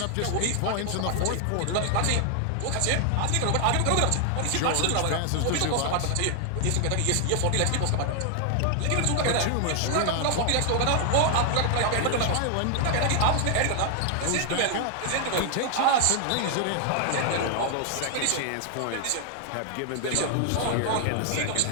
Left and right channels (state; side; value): different; both; correlation 0.00